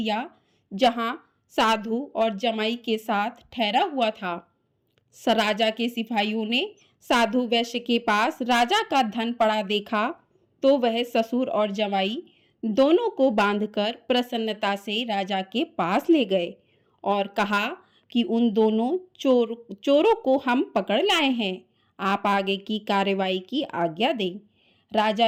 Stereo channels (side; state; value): both; identical; correlation 1.00